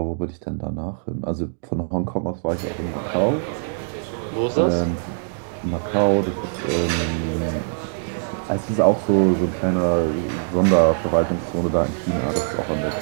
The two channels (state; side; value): silent; left; digital silence